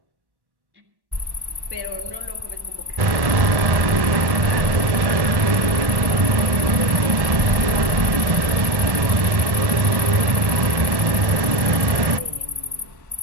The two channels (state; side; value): late; left; 1.1 ms